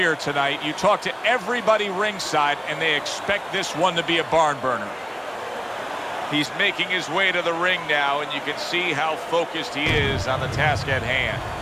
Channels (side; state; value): both; identical; correlation 1.00